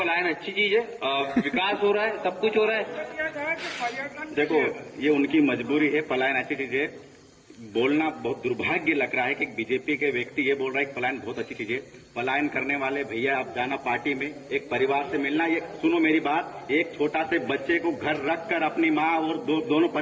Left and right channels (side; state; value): both; identical; correlation 1.00